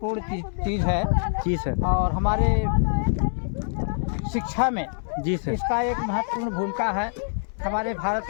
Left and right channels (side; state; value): right; silent; digital silence